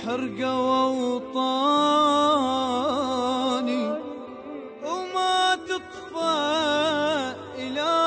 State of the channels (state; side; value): identical; both; correlation 1.00